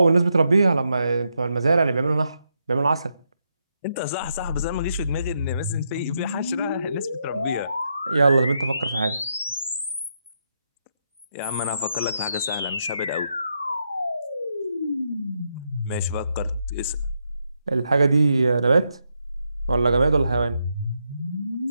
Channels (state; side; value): inverted; both; correlation -0.81